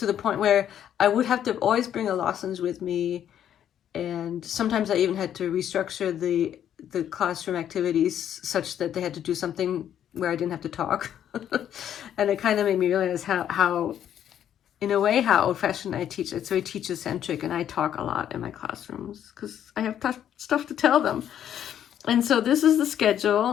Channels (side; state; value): right; quieter; 10.1 dB